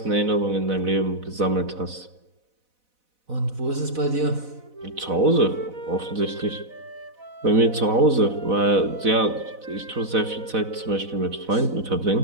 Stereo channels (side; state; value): left; late; 4.0 ms